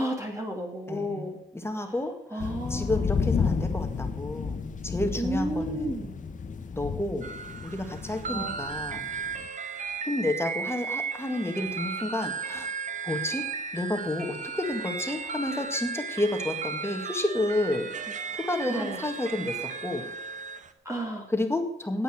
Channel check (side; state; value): both; normal; correlation 0.64